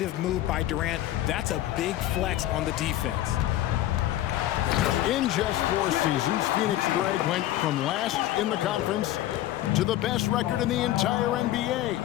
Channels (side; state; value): right; quieter; 14.0 dB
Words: move by Durant. That's a big flex on the defense. In just 4 seasons, Phoenix Greg went from last in the conference to the best record in the entire NBA.